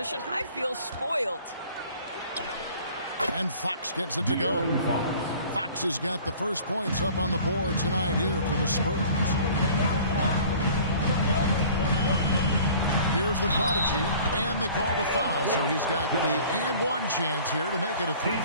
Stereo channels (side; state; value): both; inverted; correlation -0.48